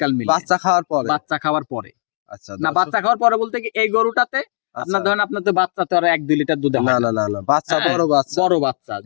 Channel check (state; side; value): silent; right; digital silence